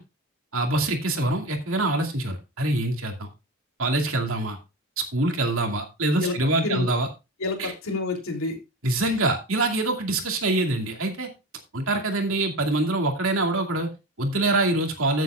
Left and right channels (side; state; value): both; normal; correlation 0.25